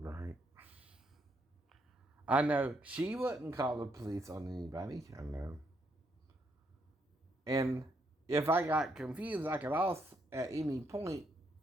I know she wouldn't call the police on anybody. I know. And if I got confused, I could also, at any point,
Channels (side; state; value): both; normal; correlation 0.75